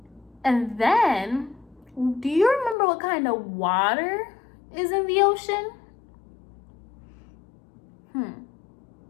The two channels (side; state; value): right; drops out; at 2.8 s